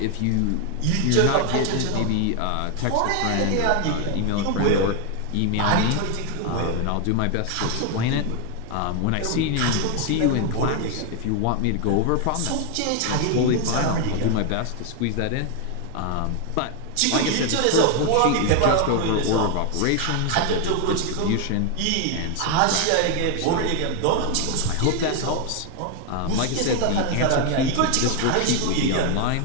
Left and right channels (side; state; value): both; different; correlation 0.01